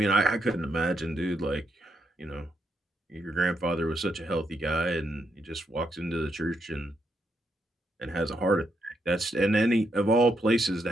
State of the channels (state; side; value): normal; both; correlation 0.79